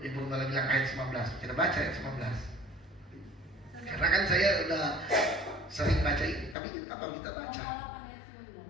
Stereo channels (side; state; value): right; drops out; at 6.6 s